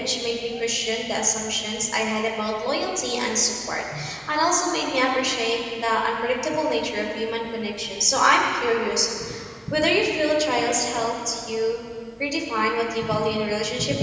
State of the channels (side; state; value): both; identical; correlation 1.00